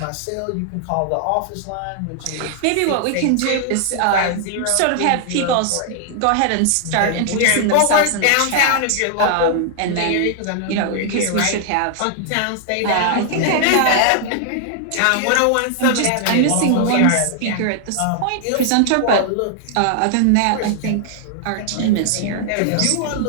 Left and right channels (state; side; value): different; both; correlation 0.00